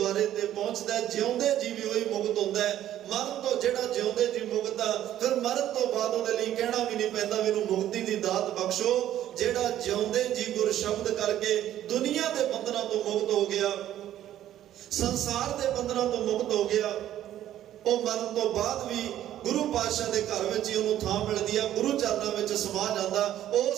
ਤੇ ਪਹੁੰਚਦਾ, ਜਿਉਂਦੇ ਜੀ ਵੀ ਉਹੀ ਮੁਕਤ ਹੁੰਦਾ ਹੈ। ਮਰਨ ਤੋਂ ਜਿਹੜਾ ਜਿਉਂਦੇ ਜੀ ਮੁਕਤ ਆ, ਫਿਰ ਮਰਨ ਤੋਂ ਬਾਅਦ ਉਹਦੇ ਲਈ ਕਹਿਣਾ ਵੀ ਨਹੀਂ ਪੈਂਦਾ ਵੀ ਇਹਨੂੰ ਮੁਕਤੀ ਦੀ ਦਾਤ ਬਖਸ਼ੋ। ਜਿਹੜਾ ਜਿਉਂਦੇ ਜੀ ਗੁਰ ਸ਼ਬਦ ਕਰਕੇ ਦੁਨੀਆ ਦੇ ਬੰਧਨਾਂ ਤੋਂ ਮੁਕਤ ਹੋ ਗਿਆ, ਸੰਸਾਰ ਦੇ ਬੰਧਨਾਂ ਤੋਂ ਮੁਕਤ ਹੋ ਗਿਆ, ਉਹ ਮਰਨ ਤੋਂ ਬਾਅਦ ਵੀ ਗੁਰੂ ਪਾਤਸ਼ਾਹ ਦੇ ਘਰ ਵਿੱਚ ਹੀ ਉਹਨੂੰ ਥਾਂ ਮਿਲਦੀ ਆ, ਗੁਰੂ ਚਰਨਾਂ ਵਿੱਚ ਸਮਾ ਜਾਂਦਾ।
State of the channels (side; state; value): left; quieter; 12.1 dB